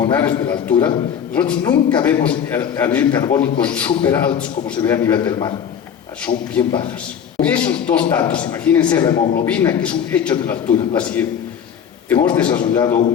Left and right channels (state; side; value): quieter; right; 8.2 dB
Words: de la altura, nosotros nunca vemos anhídridos carbónicos súper altos como se ve a nivel del mar, son bien bajas. Con esos dos datos, imagínense la hemoglobina, que es un hecho de la altura, la siguiente. Hemos desarrollado